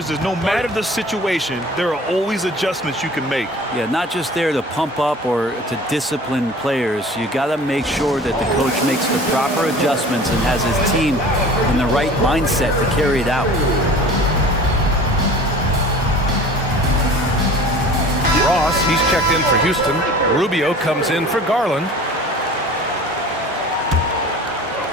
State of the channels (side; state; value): both; normal; correlation 0.43